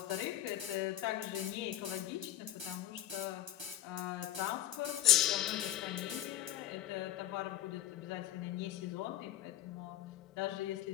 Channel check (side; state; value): right; quieter; 12.8 dB